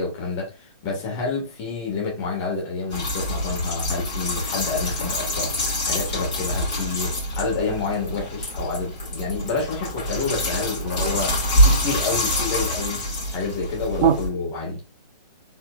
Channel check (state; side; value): inverted; both; correlation -0.34